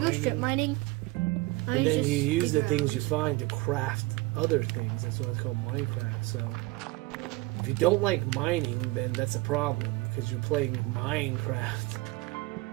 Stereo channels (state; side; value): quieter; left; 21.8 dB